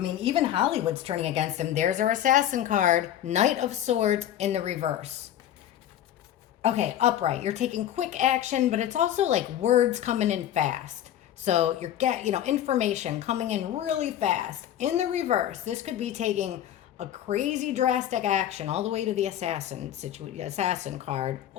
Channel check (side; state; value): right; quieter; 11.3 dB